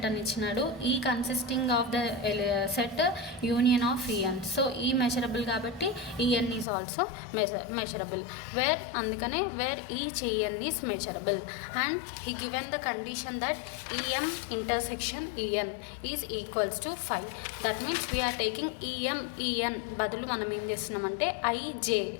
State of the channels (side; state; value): right; drops out; at 6.7 s